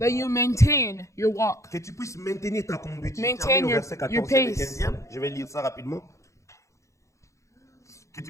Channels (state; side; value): late; right; 0.15 ms